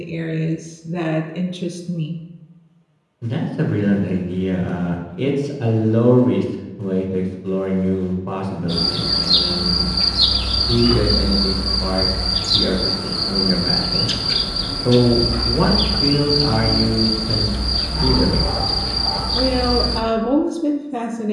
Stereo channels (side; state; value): both; identical; correlation 1.00